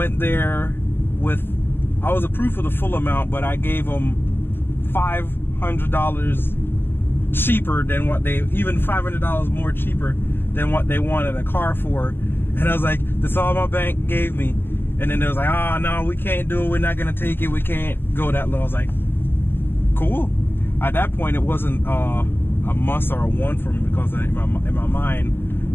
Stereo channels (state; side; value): late; right; 0.10 ms